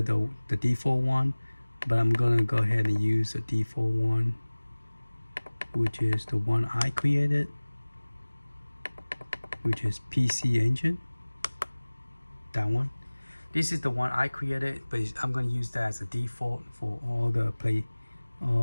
the default one, but I'm going to go ahead and use the default one, which is the one I created, which is PC Engine. That one. This is the one I created, but I'm going to use that as a default for all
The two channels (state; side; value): inverted; both; correlation -1.00